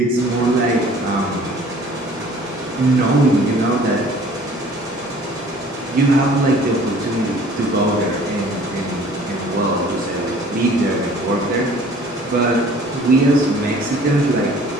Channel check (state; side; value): normal; both; correlation 0.51